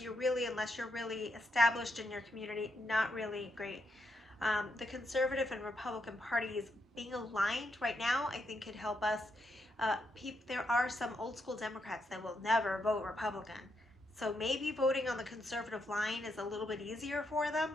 You're really, unless you're really established in your community, not really great. The conservative and Republican parties being aligned right now, I think could help us. There are some old school Democrats that will never vote Republican. So maybe voting on the conservative line is a little bit easier for them.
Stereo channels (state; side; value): normal; both; correlation 0.80